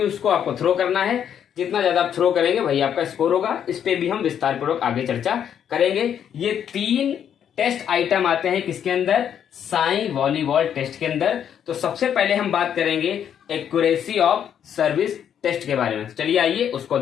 उसको आपको थ्रो करना है। जितना ज्यादा आप थ्रो करेंगे वही आपका स्कोर होगा। इस पे भी हम विस्तार पूर्वक आगे चर्चा करेंगे। ये 3 टेस्ट आइटम आते हैं किसके अंदर? साई वॉलीबॉल टेस्ट के अंदर। तो सबसे पहले हम बात करेंगे एक्यूरेसी ऑफ सर्विस टेस्ट के बारे में। चलिए आइए उसको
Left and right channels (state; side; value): quieter; right; 9.0 dB